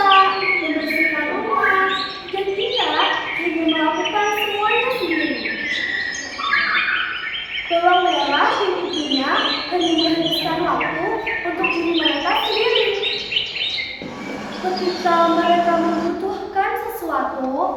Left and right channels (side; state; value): both; identical; correlation 1.00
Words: membersihkan rumah, dan dia hanya melakukan semuanya sendiri. Bawang merah dan ibunya hanya menghabiskan waktu untuk diri mereka sendiri. Ketika mereka membutuhkan sesuatu,